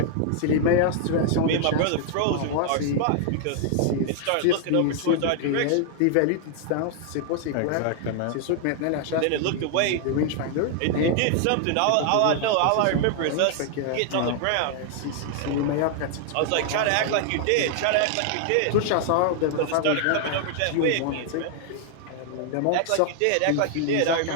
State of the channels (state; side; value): different; both; correlation 0.00